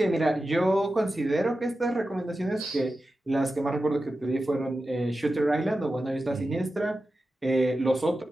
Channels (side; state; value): both; normal; correlation 0.92